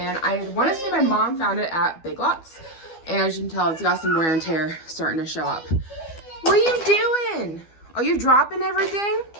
I want to say my mom found it at Big Lots, and as you can tell, it's got some wear and tear starting to show up. What are you doing? Are you dropping everything?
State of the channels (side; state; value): right; late; 12 ms